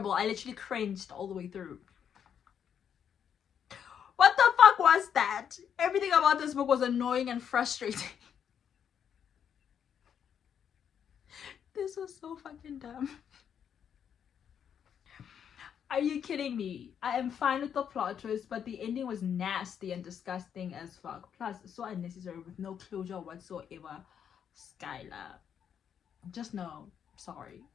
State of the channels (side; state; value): right; quieter; 8.3 dB